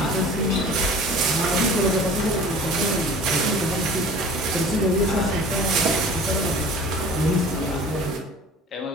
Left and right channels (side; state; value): both; normal; correlation 0.43